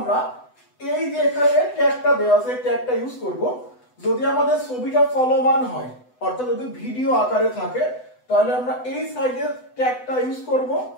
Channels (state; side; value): late; right; 8.0 ms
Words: এই যে এখানে ট্যাগটা দেওয়া আছে এই ট্যাগটা ইউজ করব। যদি আমাদের ছবিটা চলমান হয় অর্থাৎ যদি ভিডিও আকারে থাকে তাহলে আমরা এই সাইডের ট্যাগটা ইউজ করব।